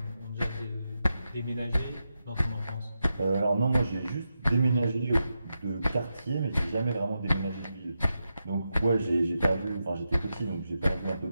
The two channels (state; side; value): inverted; both; correlation -0.88